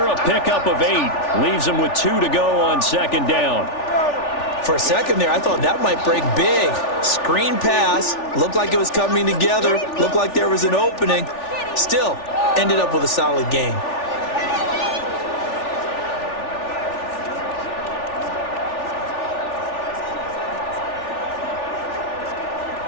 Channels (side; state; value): right; late; 3.4 ms